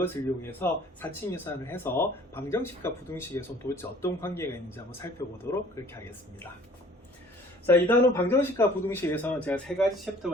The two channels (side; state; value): both; normal; correlation 0.52